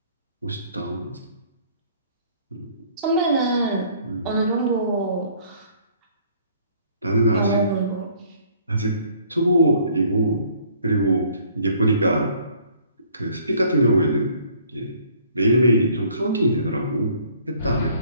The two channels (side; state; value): both; inverted; correlation -0.58